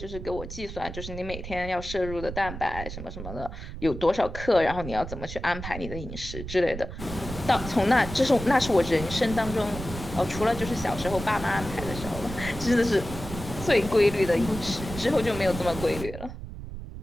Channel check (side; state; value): right; noise; rumble, 9 dB below the sound